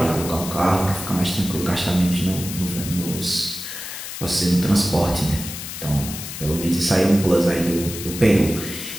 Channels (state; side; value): noise; left; hiss, 9 dB below the sound